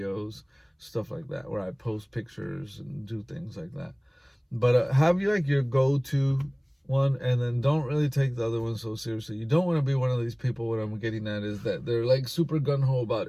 stuff like that, where I post pictures and do things like that. But have you like your go-to one, and then don't really take the other one so seriously. You don't want to be one of these people. What I'm getting at is that they're like super gung-ho about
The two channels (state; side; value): identical; both; correlation 1.00